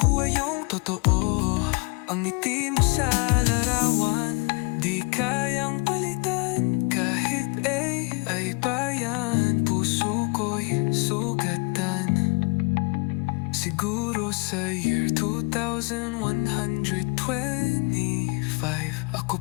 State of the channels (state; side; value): quieter; right; 31.8 dB